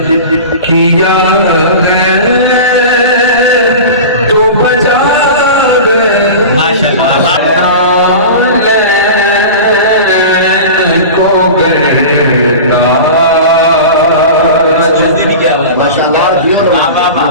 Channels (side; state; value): both; inverted; correlation -0.32